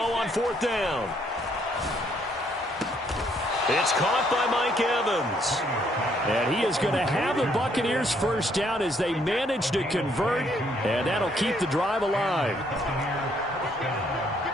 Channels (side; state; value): both; normal; correlation 0.69